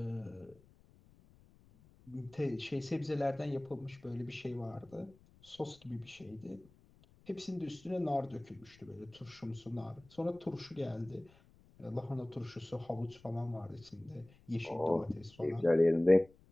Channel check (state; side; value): noise; left; rumble, 26 dB below the sound